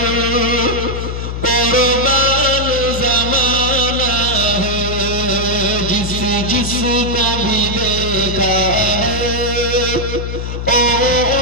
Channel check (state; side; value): noise; left; hum, 5 dB below the sound